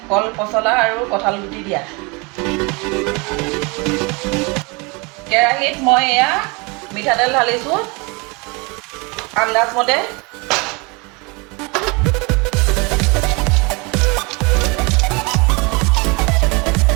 কল পচলা আৰু কঁঠাল গুটি দিয়া। কেৰাহীত মই এয়া মিঠাতেল ঢালিছোঁ আন্দাজমতে।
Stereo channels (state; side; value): quieter; left; 28.7 dB